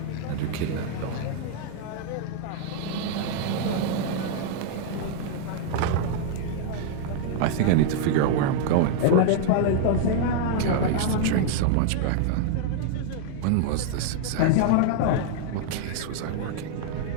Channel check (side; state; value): both; different; correlation -0.01